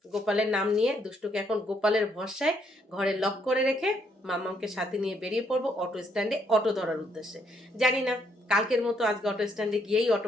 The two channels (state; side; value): normal; both; correlation 0.72